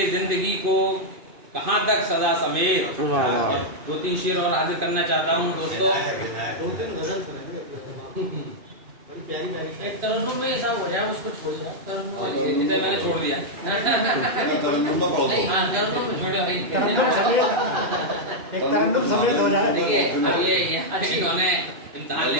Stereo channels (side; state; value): left; late; 2.5 ms